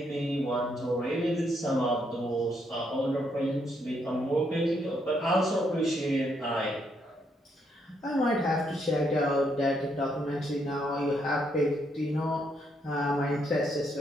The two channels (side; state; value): both; normal; correlation 0.75